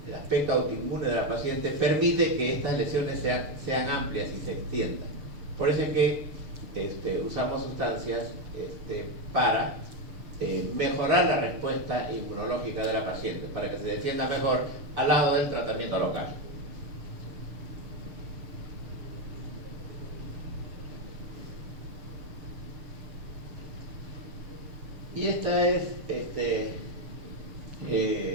el aspecto autoinmune de la paciente permite que estas lesiones sean amplias y se extiendan. Por eso es que usamos sustancias para mejorar la respuesta inmunológica de la paciente, para que se defienda mejor al lado del tratamiento local. Y esta es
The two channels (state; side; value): late; left; 6.8 ms